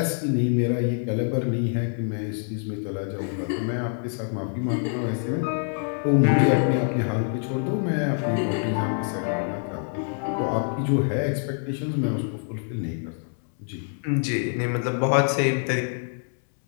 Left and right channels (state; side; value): silent; right; 57 dB below the other